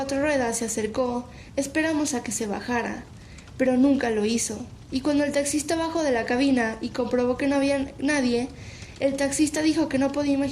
ruedas se acercó, esperamos a que se bajara, pero nunca lo hizo, y cuando el taxista bajó de la cabina y comprobó que no había nadie, el taxista dijo que no podía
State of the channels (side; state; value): both; identical; correlation 1.00